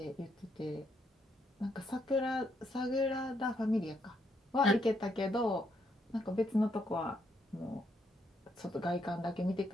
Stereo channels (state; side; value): normal; both; correlation 0.75